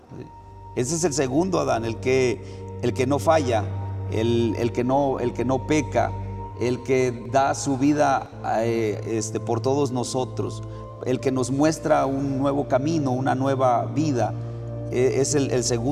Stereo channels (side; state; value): both; identical; correlation 1.00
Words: Ese es el segundo Adán, el que no falla, el que no peca, el que da su vida por todos nosotros, el que nos muestra un nuevo camino, una nueva vida. Es el